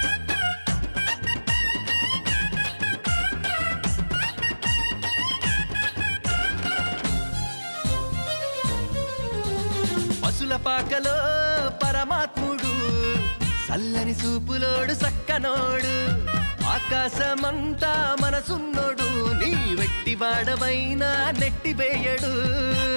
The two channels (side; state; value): both; inverted; correlation -1.00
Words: పసుల పాకలో పరమాత్ముడు చల్లని సూపులోడు సక్కనోడు ఆకాశమంతా మనసున్నోడు నీ వెట్టి వాడవైనా నెట్టివేయడు